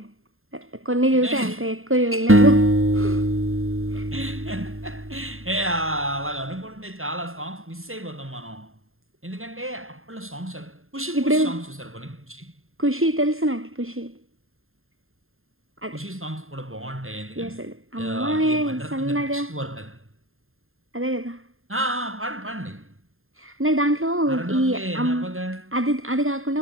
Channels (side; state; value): left; late; 0.61 ms